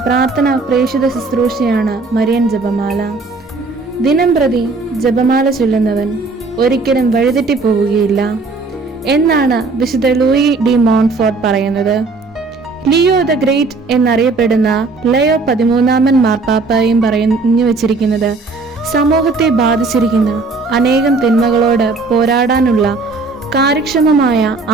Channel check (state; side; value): quieter; left; 3.8 dB